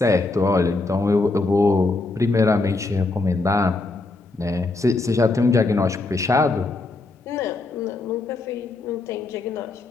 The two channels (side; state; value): right; quieter; 3.4 dB